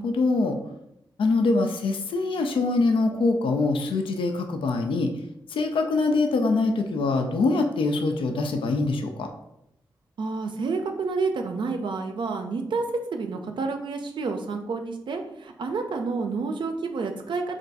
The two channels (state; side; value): normal; both; correlation 0.75